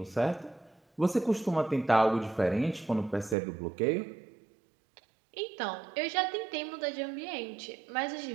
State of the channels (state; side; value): drops out; left; at 3.4 s